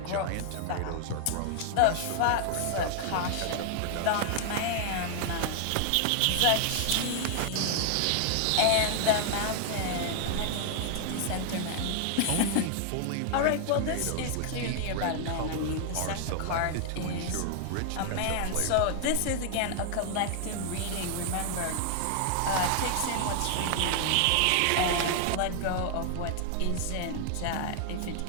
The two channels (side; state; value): both; different; correlation 0.00